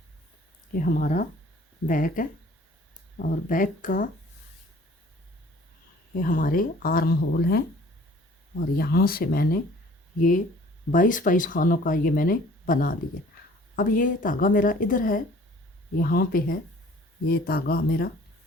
ये हमारा बैक है और बैक का ये हमारे आर्म होल हैं और यहाँ से मैंने ये 22 खानों का ये मैंने बना लिया। अब ये धागा मेरा इधर है, यहाँ पे है ये धागा मेरा।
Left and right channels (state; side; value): normal; both; correlation 0.52